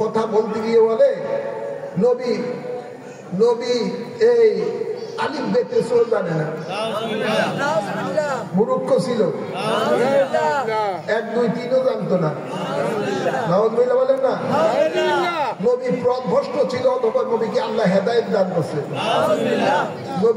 কথা বলতে গিয়ে বলে নবী এই আলিফ বেতে সূরা জানে না, মূর্খ ছিল, 1 2 3ও জানতো না, নাউযুবিল্লাহ বলেন না। নবী পথভ্রষ্ট ছিল, অথবা নবীকে আল্লাহ হেদায়েত দান করছে।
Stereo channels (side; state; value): both; identical; correlation 1.00